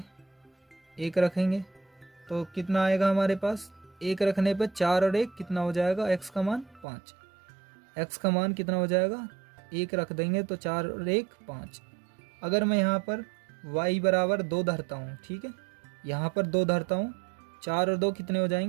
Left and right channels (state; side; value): drops out; left; at 6.9 s